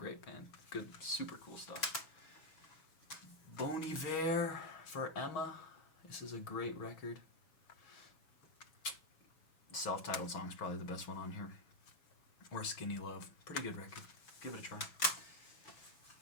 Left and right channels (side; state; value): right; late; 7.1 ms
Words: band. Good, super cool stuff. Bon Iver for Emma. This is a great record. Self-titled song's probably the best one on here. Or Skinny Love. Pretty good record. Give it a try.